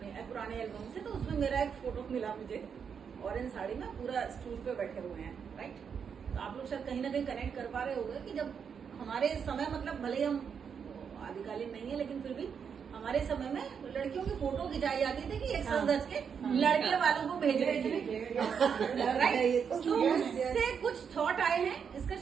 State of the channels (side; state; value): left; quieter; 6.9 dB